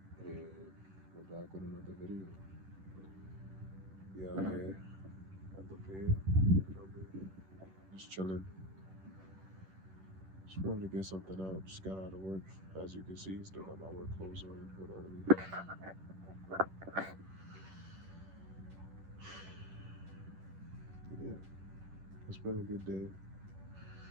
And we're back with another video. Yeah, here at the bed. Just chilling. Just wanted to get something out. Just got out of work. As you can see, still got my work clothes on. But yeah, it's been a good day,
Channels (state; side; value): late; left; 11 ms